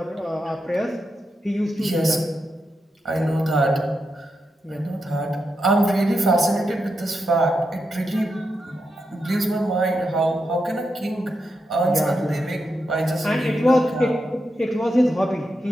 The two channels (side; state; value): both; normal; correlation 0.86